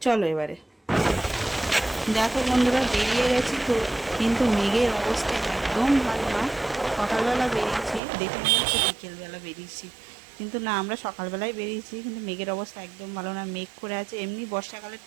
চলো এবারে দেখো বন্ধুরা, বেরিয়ে গেছি। তো কিন্তু মেঘের অবস্থা একদম ভালো না। সকালবেলা বেরিয়েছি, দেখে মনে হচ্ছে বিকেলবেলা বেরিয়েছি, কিন্তু না, আমরা সকালবেলায় বেরিয়েছি। কিন্তু মেঘের অবস্থা একদম ভালো না, মেঘ করে আছে। এমনি বর্ষাকালের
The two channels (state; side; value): drops out; left; at 8.0 s